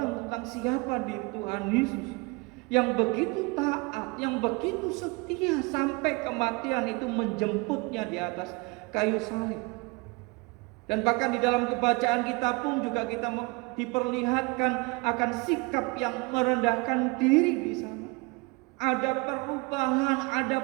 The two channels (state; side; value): quieter; left; 27.5 dB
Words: tentang siapa diri Tuhan Yesus yang begitu taat, yang begitu setia sampai kematian itu menjemputnya di atas kayu salib. Dan bahkan di dalam kebacaan kita pun juga kita diperlihatkan akan sikap yang merendahkan diri di sana. Ada perubahan,